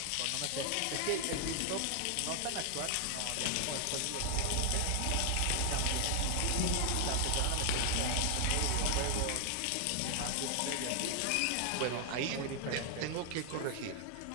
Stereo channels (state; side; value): different; both; correlation 0.00